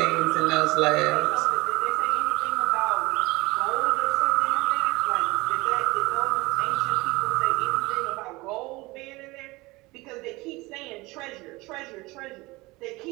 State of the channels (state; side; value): quieter; left; 22.3 dB